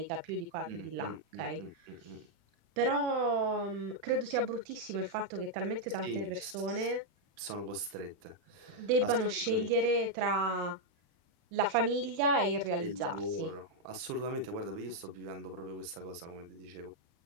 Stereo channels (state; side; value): late; left; 36 ms